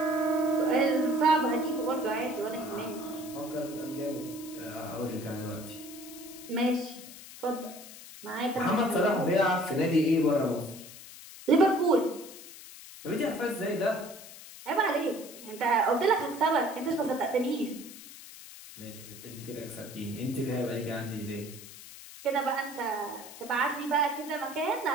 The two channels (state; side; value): noise; left; hiss, 15 dB below the sound